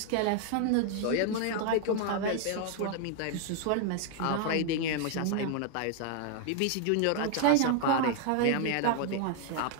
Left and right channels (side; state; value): both; different; correlation 0.00